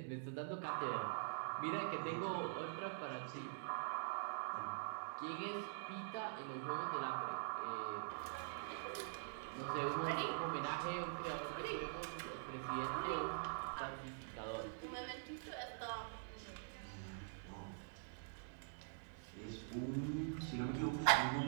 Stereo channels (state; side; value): silent; left; digital silence